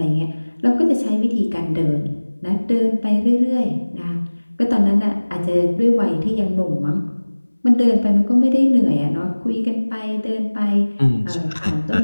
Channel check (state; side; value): inverted; both; correlation -1.00